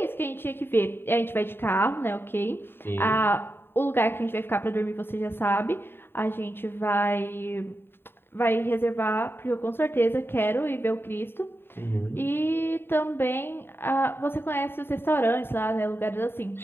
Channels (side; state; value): right; late; 0.11 ms